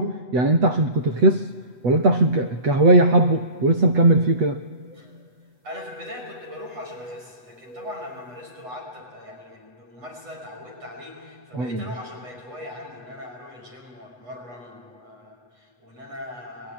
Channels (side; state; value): left; late; 8.2 ms